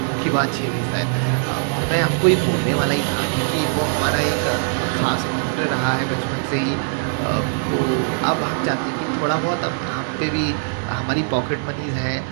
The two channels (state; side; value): silent; left; digital silence